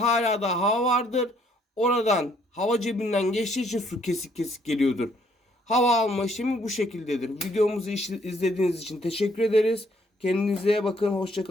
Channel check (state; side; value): normal; both; correlation 0.66